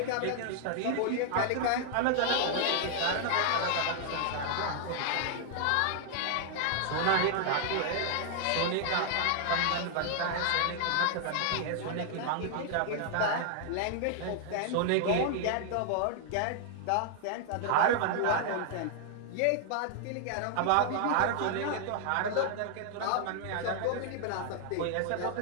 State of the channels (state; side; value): different; both; correlation 0.00